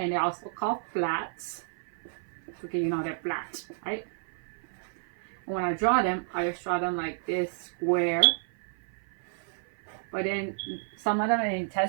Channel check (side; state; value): left; silent; 57 dB below the other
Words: they're also called flats. Okay, you know they're flat, right? And when I draw them, I just draw them like this square. But then some of them in